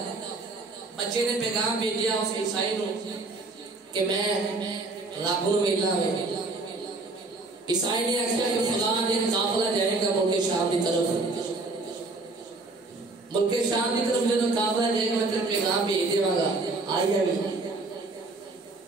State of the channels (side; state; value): left; quieter; 3.3 dB